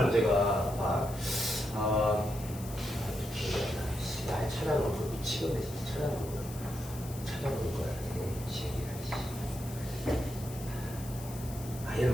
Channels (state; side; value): noise; left; hiss, 15 dB below the sound